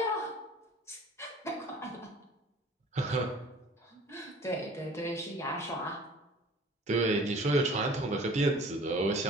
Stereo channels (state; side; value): normal; both; correlation 0.47